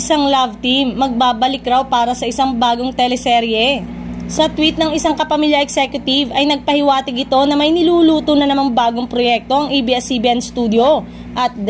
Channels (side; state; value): both; identical; correlation 1.00